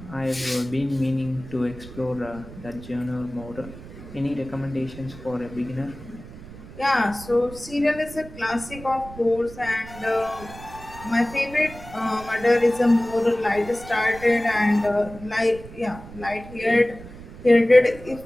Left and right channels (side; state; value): right; noise; rumble, 16 dB below the sound